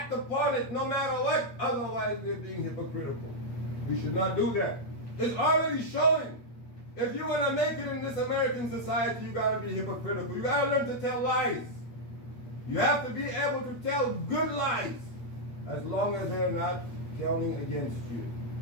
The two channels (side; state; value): right; late; 8.6 ms